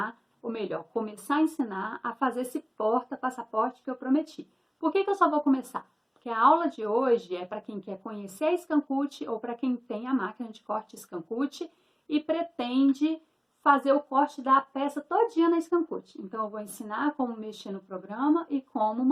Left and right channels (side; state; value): both; identical; correlation 1.00